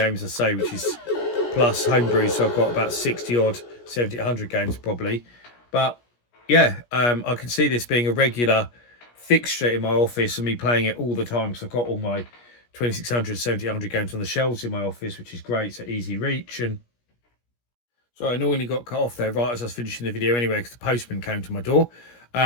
I say, which is plus Homebrew, so I've got about 60 odd 7800 games probably. But yeah, I can see this being a regular fixture in my office and me playing it all the time, because I've got all my 2600 7800 games on the shelves in my office, which is great. So easy reach. And so I normally got cut off there right as I was finishing the video anyway, because the postman came to my door.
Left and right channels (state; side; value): late; right; 17 ms